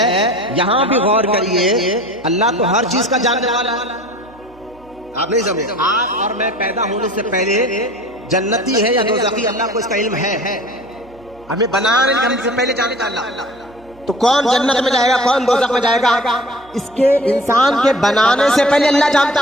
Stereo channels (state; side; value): noise; right; hum, 26 dB below the sound